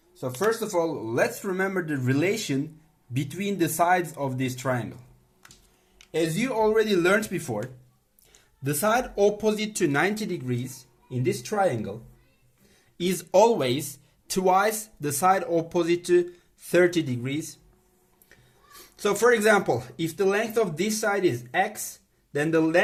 So first of all, let's remember the relation between the sides of this triangle. As you already learned before, the side opposite to 90 degrees in this triangle is always twice the side opposite to 30 degrees. So for example, if the length of this side is x, then the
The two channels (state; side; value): identical; both; correlation 1.00